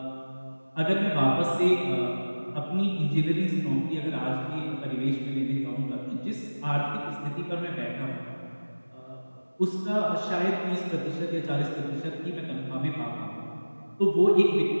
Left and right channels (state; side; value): inverted; both; correlation -1.00